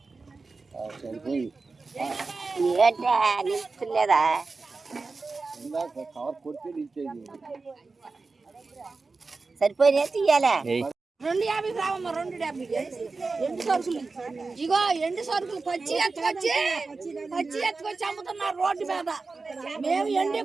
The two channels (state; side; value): quieter; left; 4.0 dB